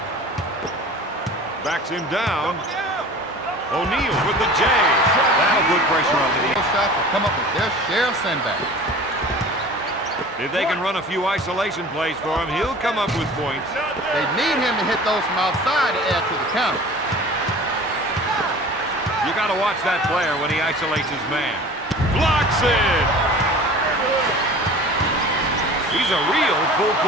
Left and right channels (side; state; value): both; normal; correlation 0.41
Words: Backs him down. O'Neal with the J. That'll put pressure on the knee. Shots will come up with their share of sendbacks. If they can run a few isolation plays for him, he'll come up with points. They need him to hit those from outside to add to the count. You got to watch that player when he isolates his man. Blocks it! He's a real